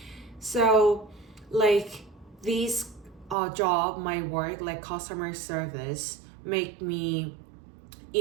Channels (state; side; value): drops out; left; at 3.4 s